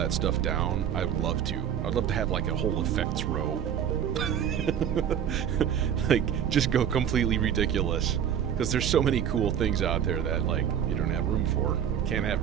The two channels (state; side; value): quieter; left; 9.1 dB